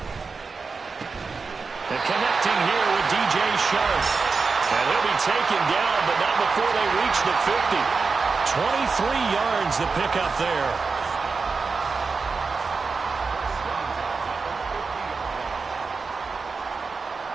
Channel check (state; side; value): quieter; left; 4.6 dB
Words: And connecting here with DJ Sharp. And he'll be taken down, but not before they reach the 50. 23 yards the pickup there.